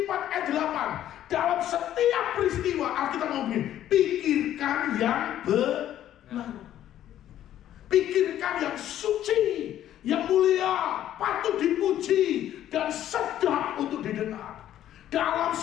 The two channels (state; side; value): quieter; right; 11.8 dB